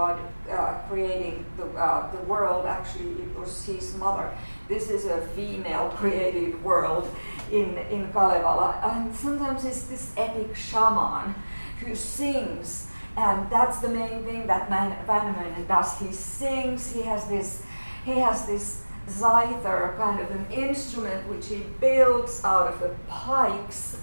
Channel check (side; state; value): both; inverted; correlation -1.00